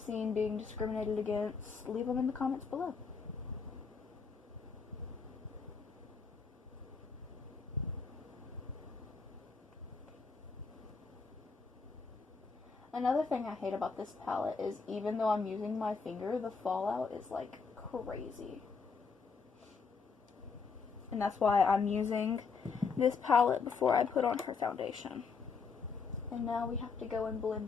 being discriminated against, leave them in the comments below. Another thing I hate about this palette is even though I'm using my finger, the fallout is like crazy. And that's why I'm using this palette before I put on her foundation. And now we have to go and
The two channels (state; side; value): quieter; right; 5.1 dB